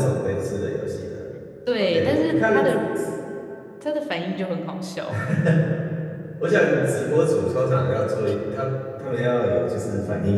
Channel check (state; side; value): identical; both; correlation 1.00